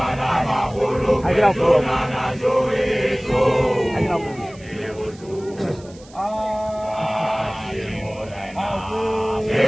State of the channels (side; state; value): right; noise; hiss, 24 dB below the sound